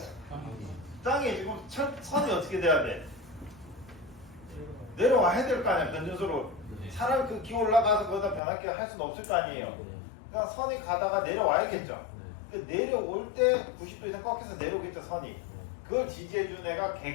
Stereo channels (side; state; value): right; drops out; at 8.4 s